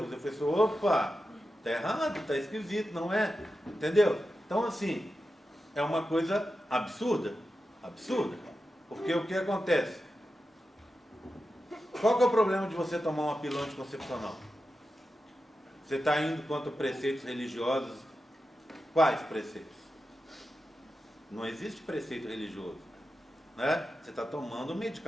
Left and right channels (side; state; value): both; normal; correlation 0.91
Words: Eu falei assim, opa, tá errado, tá esquisito, não é? Entendeu? Então assim, é uma coisa absurda. Absurda. Porque o que acontece? Qual que é o problema de você tomar uma pílula anticoncepcional? Você está indo contra preceitos religiosos. Quais preceitos? Não existe preceito religioso, né? Você está tomando um